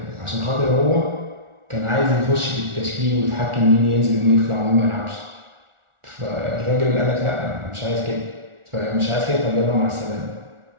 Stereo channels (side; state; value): left; late; 1.4 ms